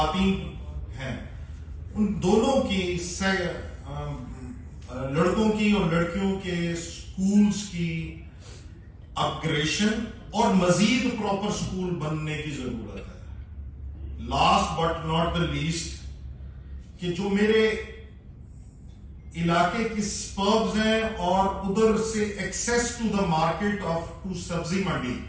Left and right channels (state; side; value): identical; both; correlation 1.00